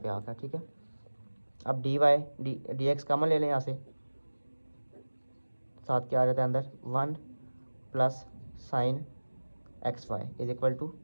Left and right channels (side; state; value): both; inverted; correlation -1.00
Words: आ गया। ठीक है, अब d y d x common ले लें यहाँ से, साथ क्या आ जाता है अंदर 1 plus sine x y is equal to